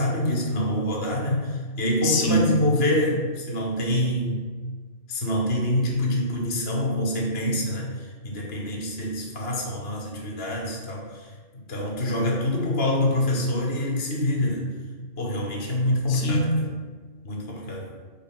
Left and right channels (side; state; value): right; late; 2.9 ms